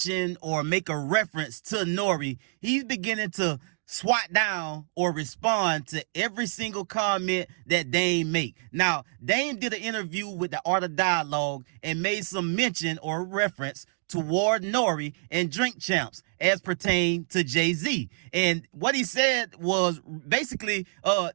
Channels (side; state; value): left; silent; digital silence